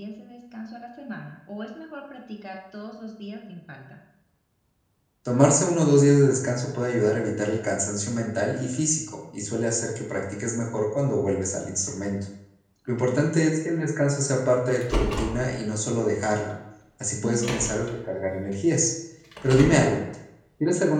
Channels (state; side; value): identical; both; correlation 1.00